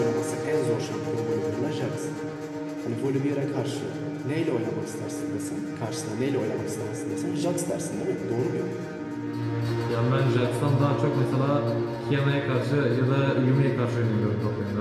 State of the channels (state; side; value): identical; both; correlation 1.00